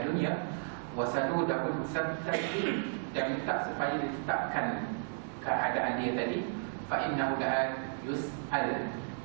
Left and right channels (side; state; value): left; silent; digital silence